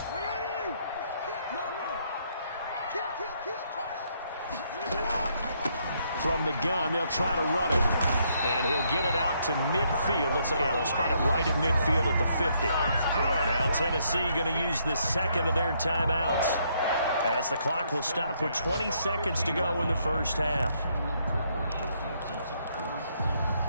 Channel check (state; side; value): inverted; both; correlation -0.72